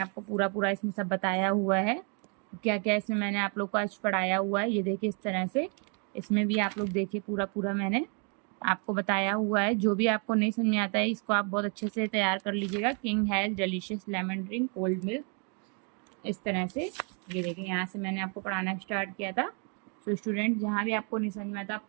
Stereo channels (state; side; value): quieter; left; 38.0 dB